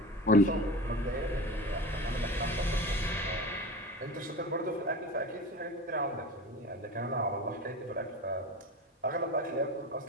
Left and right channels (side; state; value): both; normal; correlation 0.31